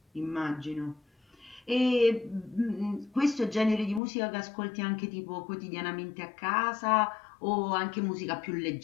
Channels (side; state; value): right; drops out; at 4.0 s